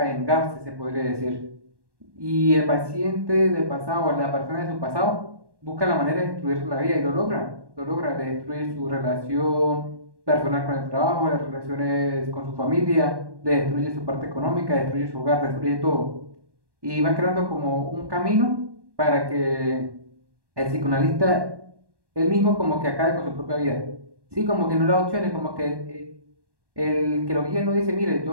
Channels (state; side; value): late; left; 1.1 ms